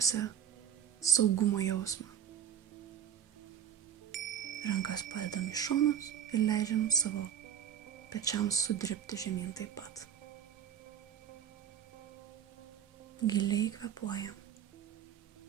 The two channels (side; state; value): left; quieter; 9.2 dB